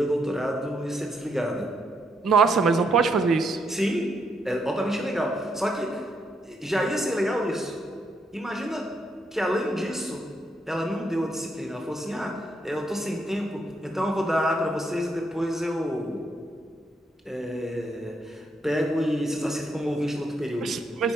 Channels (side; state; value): both; normal; correlation 0.76